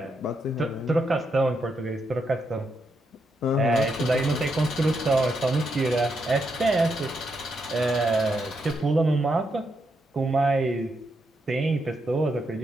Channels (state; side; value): normal; both; correlation 0.81